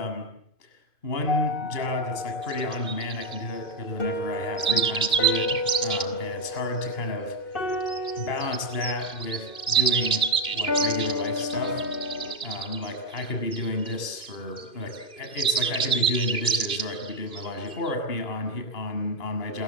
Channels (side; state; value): right; late; 2.5 ms